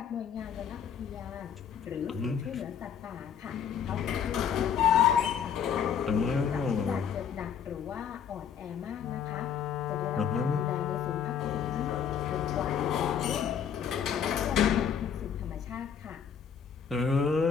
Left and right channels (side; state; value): right; quieter; 7.8 dB